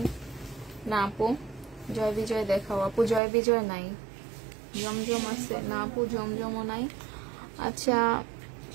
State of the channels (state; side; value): drops out; left; at 3.2 s